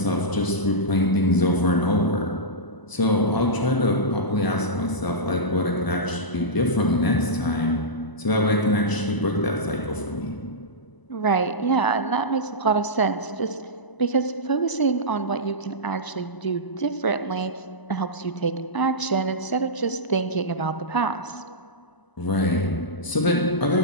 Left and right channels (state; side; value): late; right; 1.0 ms